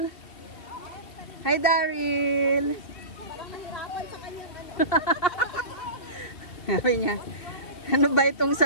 Hi, Daryl. Parang nahirapan sa kanyang Sabi niya, ano ba itong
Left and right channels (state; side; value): late; right; 2.4 ms